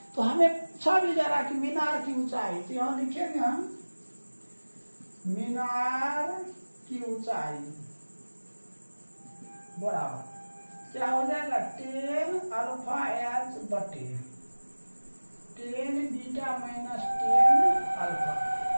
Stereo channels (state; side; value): inverted; both; correlation -1.00